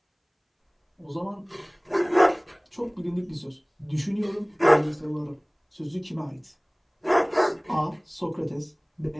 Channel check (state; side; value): identical; both; correlation 1.00